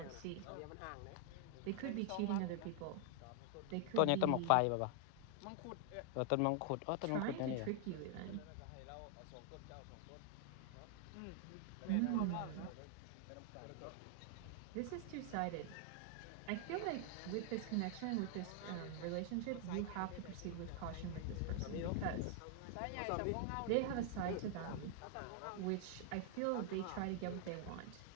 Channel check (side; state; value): both; different; correlation 0.00